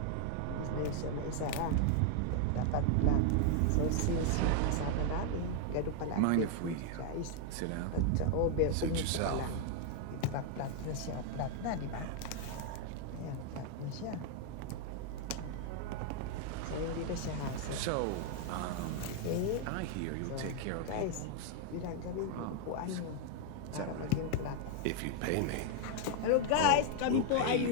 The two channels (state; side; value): different; both; correlation 0.00